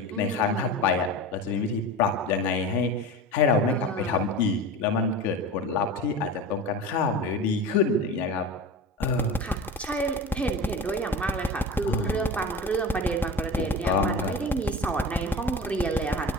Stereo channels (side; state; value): both; normal; correlation 0.30